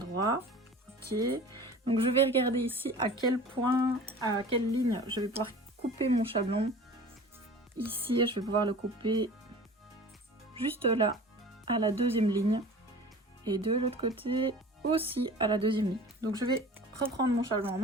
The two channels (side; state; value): both; normal; correlation 0.41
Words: Ok. Donc je vais regarder ici à quel point, à quelle ligne je vais pouvoir couper mon chablon. Ici, je vais pouvoir le couper juste là, à la deuxième ligne. Et de l'autre côté aussi à la deuxième ligne. Donc je vais reprendre mon chablon en